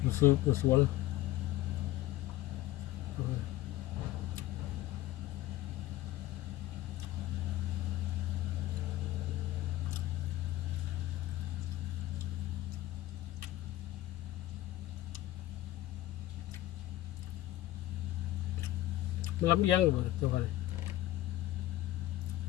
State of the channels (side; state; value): right; quieter; 15.6 dB